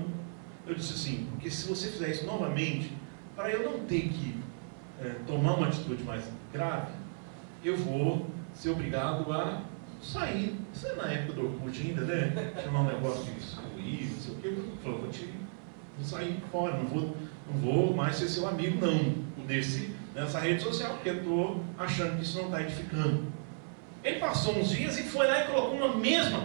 eu disse assim: porque se você fizer isso novamente, para eu não ter que tomar uma atitude mais grave, eu vou ser obrigado a sair. Isso é na época do Orkut ainda, né? Chamar um negócio de excluir, não sei o que. Eu falei: vou sair fora, não vou mais ser seu amigo, não. Nessa rede social, porque eu estou achando que isso não está edificando. Ele passou uns dias e foi lá e colocou uma mesma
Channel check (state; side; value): silent; left; 55 dB below the other